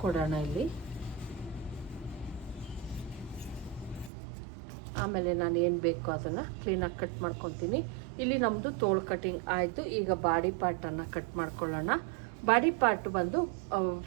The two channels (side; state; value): left; drops out; at 4.1 s